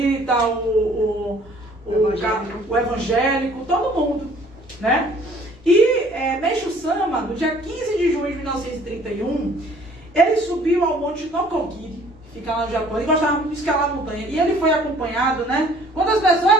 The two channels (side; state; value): left; noise; rumble, 28 dB below the sound